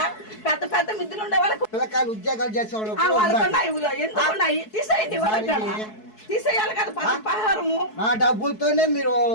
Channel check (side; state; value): right; late; 4.7 ms